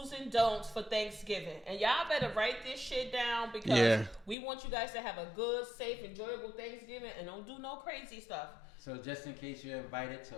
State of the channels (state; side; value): drops out; right; at 4.4 s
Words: and don'ts for Thanksgiving. And y'all better write this shit down, because we want you guys to have a good, safe, enjoyable Thanksgiving, and don't do no crazy stuff. So just in case you're invited